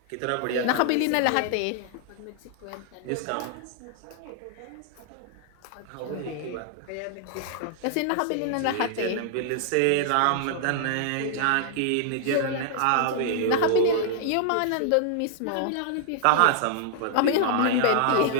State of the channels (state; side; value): different; both; correlation -0.01